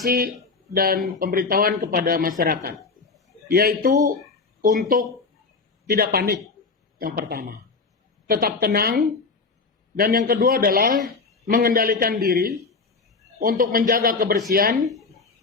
dan pemberitahuan kepada masyarakat, yaitu untuk tidak panik. Yang pertama, tetap tenang, dan yang kedua adalah mengendalikan diri untuk menjaga kebersihan,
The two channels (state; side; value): quieter; right; 4.3 dB